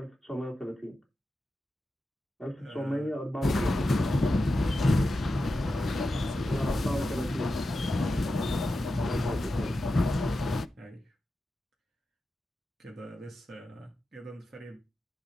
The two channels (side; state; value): both; normal; correlation 0.91